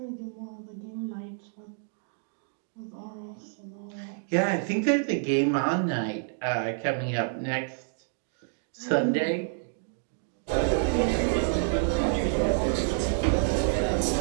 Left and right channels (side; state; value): left; silent; digital silence